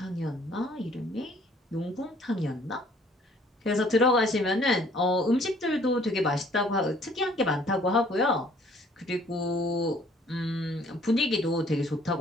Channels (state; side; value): normal; both; correlation 0.59